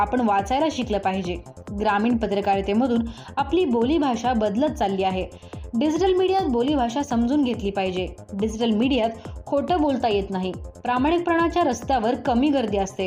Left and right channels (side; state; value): both; identical; correlation 1.00